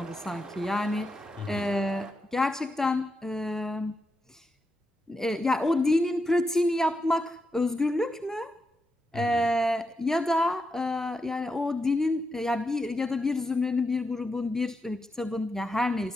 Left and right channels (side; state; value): both; normal; correlation 0.86